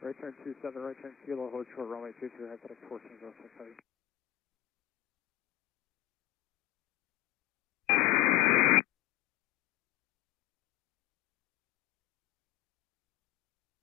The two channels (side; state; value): right; quieter; 15.2 dB